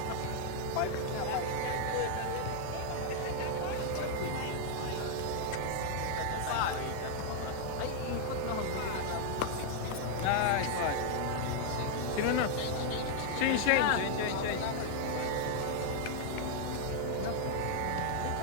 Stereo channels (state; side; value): different; both; correlation 0.00